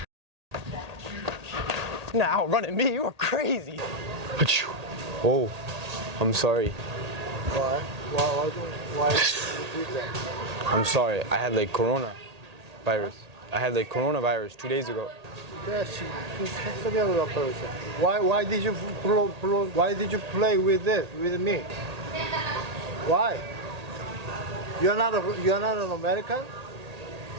Nah, outrunning me, you are crazy. Achoo. Oh, I'm sorry. Why? Why do you do that? I'm sorry. I had like coronavirus. I had like coronavirus 2 days ago. Why did you why did you play with this with me? Why? You're not an American?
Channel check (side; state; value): left; late; 1.8 ms